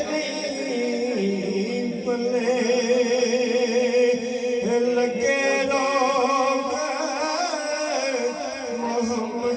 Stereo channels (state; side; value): identical; both; correlation 1.00